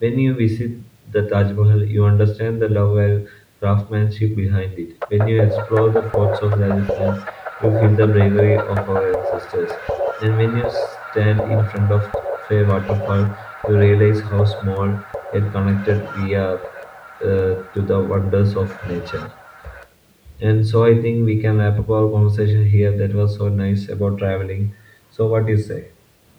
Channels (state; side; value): identical; both; correlation 1.00